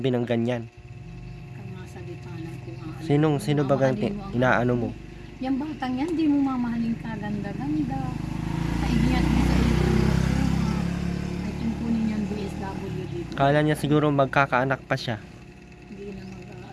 ng ganyan. Kamasalita ng kung ano. Sino ba gang inaano mo? Yung batang yan, di mo mamahalin kaganda-ganda. Kaigiyat mo sa iyo. Ay tungkunin niyang DSWD. Kala niya siguro magkakaanak pa siya. Hindi na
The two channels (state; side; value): identical; both; correlation 1.00